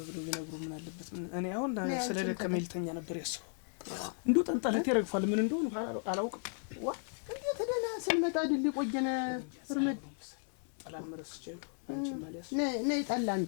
ብለው ቢነግሩ ምን አለበት? እኔ አሁን ስለደከመኝ ልተኛ ነበር ያሰው። እንደው ጠንጠለት ይረግፋል ምን እንደሆነ አላውቅም። ዋ እንዴት ደህና ስንመጣ አይደል ቆየነ እርምድ ጠላም መረስቼው አንቺ ማሊያስ ነይ ጠላ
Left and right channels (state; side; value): silent; right; 54 dB below the other